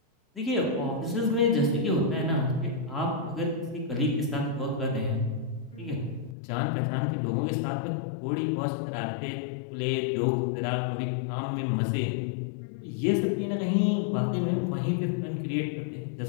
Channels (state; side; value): drops out; right; at 6.4 s